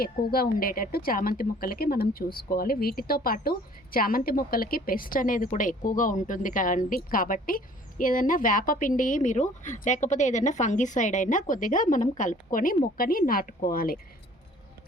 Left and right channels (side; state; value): both; normal; correlation 0.53